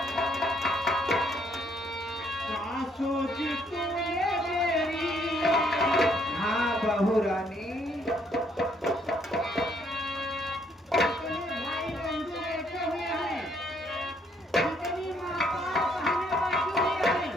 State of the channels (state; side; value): normal; both; correlation 0.68